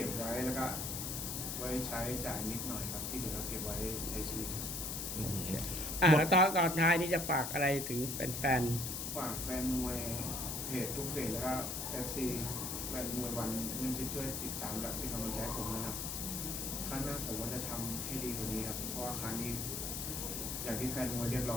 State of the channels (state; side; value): noise; left; hiss, 3 dB below the sound